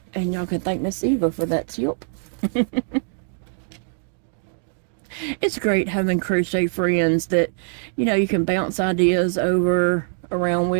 And y'all can thank Miss Eva for that tip. It's great having crochet friends that, you know, you can bounce ideas around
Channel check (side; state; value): left; silent; digital silence